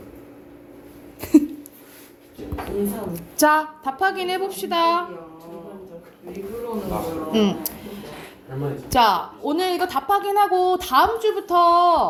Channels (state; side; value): identical; both; correlation 1.00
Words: 인상. 자, 답 확인해 봅시다. 일부러는 거야. 할머니. 자, 오늘 이거 답 확인하고 다음